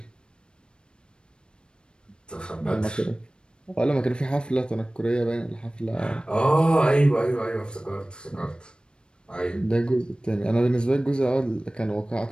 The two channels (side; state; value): right; late; 0.053 ms